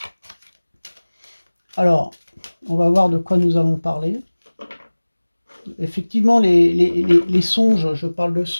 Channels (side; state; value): both; inverted; correlation -1.00